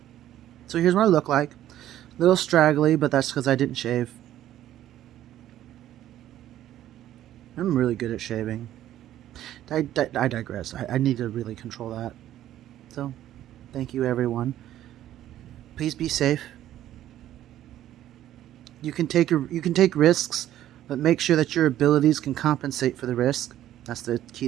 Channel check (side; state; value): left; quieter; 12.6 dB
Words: So here's what I look like. A little straggly, but that's because I didn't shave. I'm really good at shaving. I digress. I need to really control that. So, thank you everyone. Please be safe. You can take risks, but make sure that your abilities can compensate for the risk. That's the